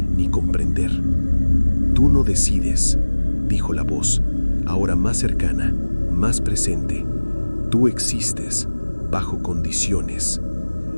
comprender. «Tú no decides», dijo la voz, ahora más cercana, más presente. «Tú existes, bajo condiciones».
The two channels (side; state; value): both; inverted; correlation -1.00